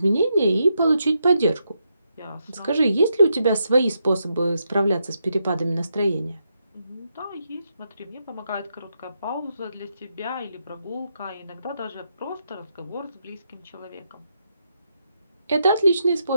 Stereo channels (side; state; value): both; inverted; correlation -0.82